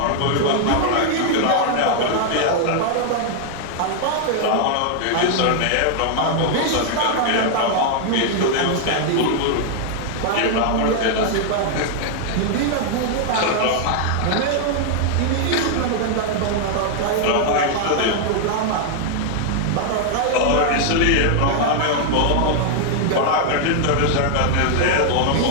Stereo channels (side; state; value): both; different; correlation 0.00